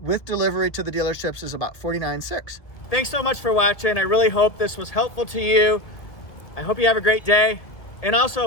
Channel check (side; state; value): right; late; 1.8 ms